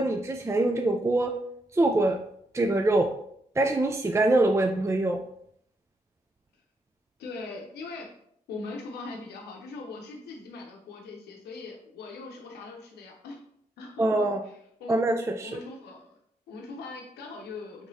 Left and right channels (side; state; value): both; normal; correlation 0.80